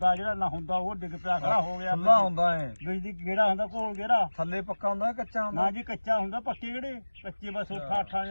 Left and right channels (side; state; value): both; inverted; correlation -1.00